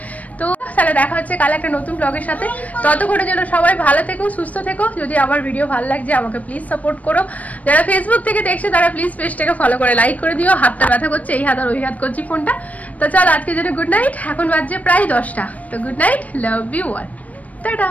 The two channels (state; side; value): late; right; 0.070 ms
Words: তো তাহলে দেখা হচ্ছে কাল একটা নতুন ব্লগের সাথে। ততক্ষণে যেন সবাই ভালো থেকো, সুস্থ থেকো। যদি আমার ভিডিও ভালো লাগছে আমাকে প্লিজ সাপোর্ট করো। যারা ফেসবুক থেকে দেখছো তারা প্লিজ পেজটাকে ফলো করে লাইক করে দিও। হাতটা ব্যথা করছে, এই হাত আর ওই হাত করছি ফোনটা। তো চল আজকে জন্য গুড নাইট, এখন বাজছে প্রায় 10টা। তো good night, love you all, tata.